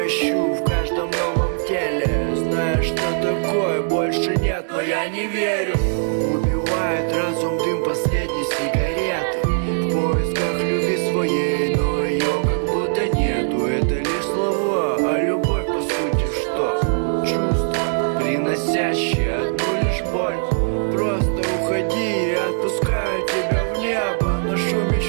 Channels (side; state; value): left; silent; digital silence